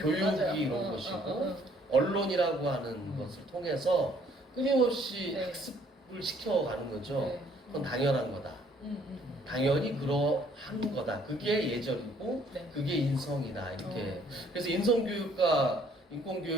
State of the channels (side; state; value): both; normal; correlation 0.62